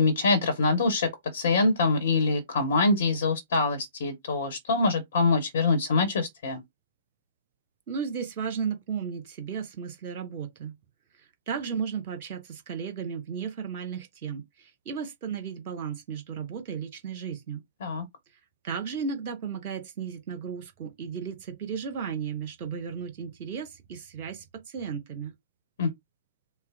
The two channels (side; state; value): both; inverted; correlation -0.55